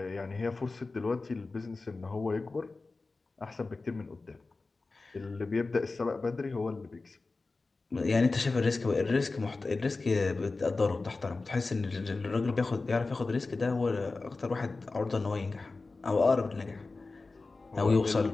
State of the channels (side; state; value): right; quieter; 3.7 dB